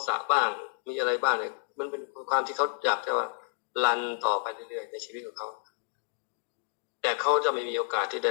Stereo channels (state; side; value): silent; right; digital silence